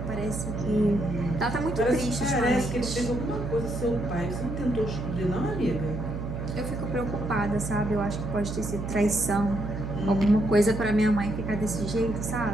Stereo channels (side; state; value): right; noise; hum, 5 dB below the sound